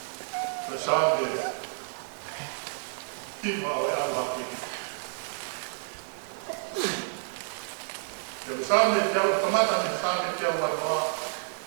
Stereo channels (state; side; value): silent; left; digital silence